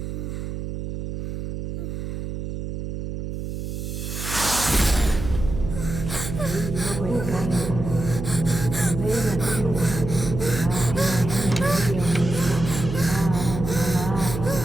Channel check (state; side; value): noise; right; hum, 5 dB below the sound